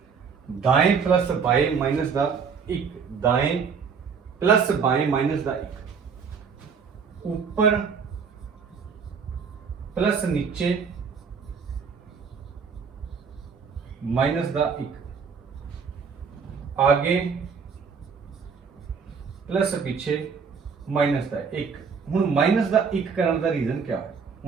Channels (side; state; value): left; quieter; 6.0 dB